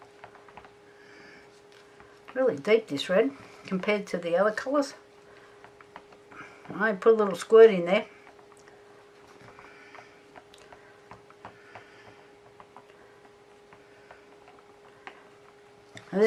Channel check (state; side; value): identical; both; correlation 1.00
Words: Really deep, this red, compared to the other colours. I put a little squirt in there. And